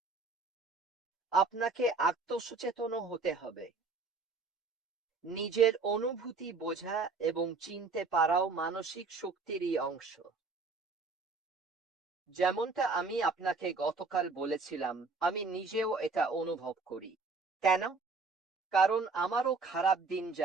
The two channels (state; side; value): quieter; left; 4.1 dB